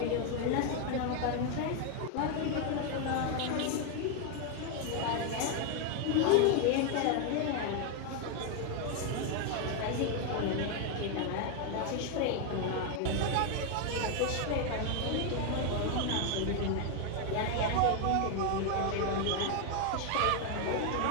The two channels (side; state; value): both; different; correlation 0.01